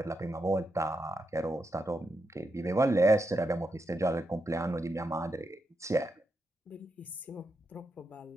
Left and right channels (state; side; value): normal; both; correlation 0.84